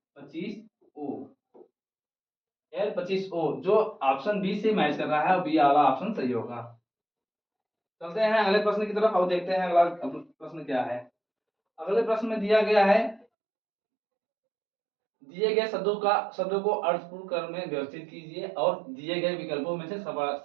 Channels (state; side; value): drops out; left; at 13.2 s